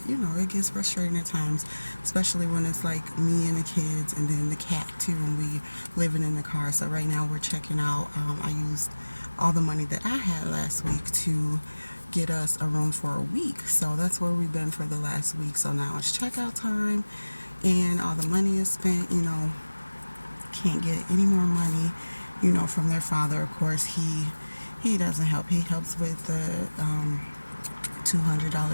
it gets frustrating at times, especially when it's like me and the kids and then the cat too, and we living in the car. So right now we're checking out. I used all the money that I had last week to get us a room for a week. So that's where we've been for the last week. So now it's checkout time, and all the money is spent. Can't get any more money, from their father. Of course, he doesn't help. He helps with the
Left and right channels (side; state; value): both; inverted; correlation -1.00